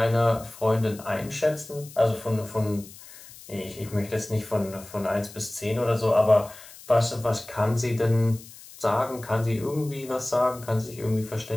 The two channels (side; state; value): left; noise; hiss, 18 dB below the sound